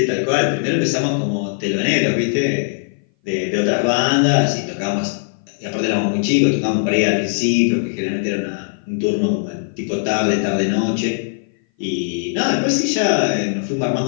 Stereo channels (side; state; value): right; silent; 59 dB below the other